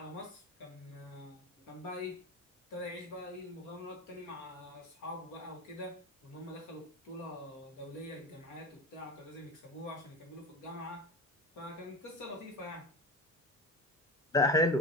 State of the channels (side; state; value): both; normal; correlation 0.27